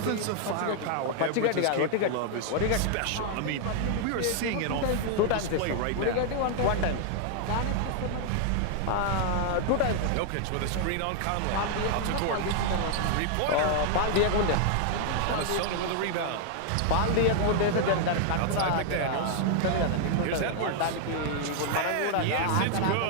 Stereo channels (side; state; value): both; different; correlation 0.00